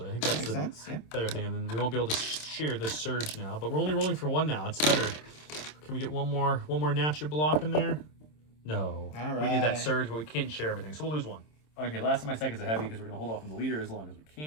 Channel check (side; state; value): right; late; 26 ms